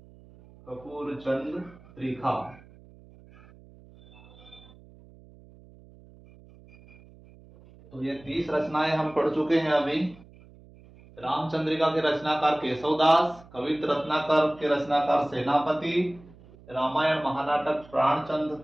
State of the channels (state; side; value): noise; right; hum, 23 dB below the sound